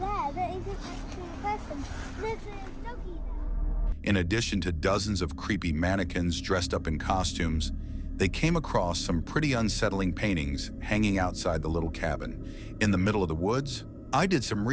that isn't actually a person. There's a doggy there. In addition to dozens of creepy mannequins dressed up in costumes, they came across some pretty unsettling paintings hanging outside the little cabin. In the middle of the woods, I did some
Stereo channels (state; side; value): identical; both; correlation 1.00